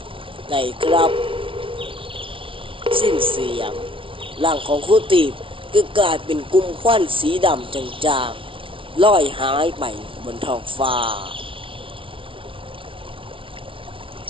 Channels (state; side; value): late; left; 0.25 ms